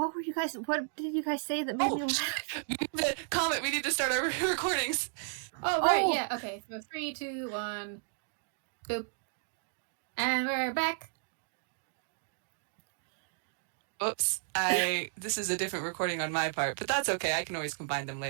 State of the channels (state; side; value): silent; left; digital silence